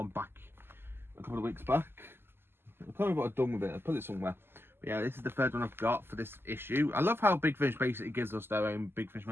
back a couple of weeks back. I can't remember what I've done with it. I put it somewhere. But yeah, this is the 3rd one I've got for this issue. I love how Big Finish basically gives us their own Big Finish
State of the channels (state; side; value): late; left; 0.11 ms